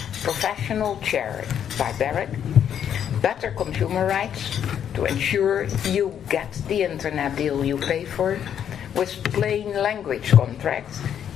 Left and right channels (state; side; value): quieter; right; 9.1 dB